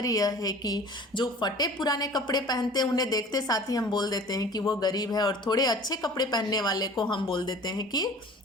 यह है कि जो फटे पुराने कपड़े पहनते हैं उन्हें देखते साथ ही हम बोल देते हैं कि वो गरीब है, और थोड़े अच्छे कपड़े पहनने वाले को हम बोल देते हैं कि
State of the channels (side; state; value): both; normal; correlation 0.44